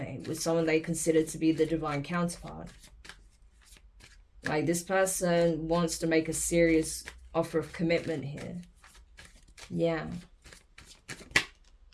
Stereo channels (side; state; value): both; identical; correlation 1.00